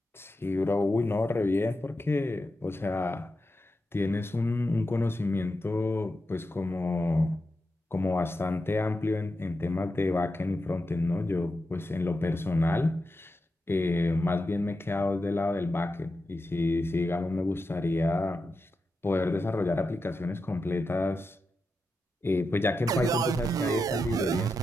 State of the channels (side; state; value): both; normal; correlation 0.89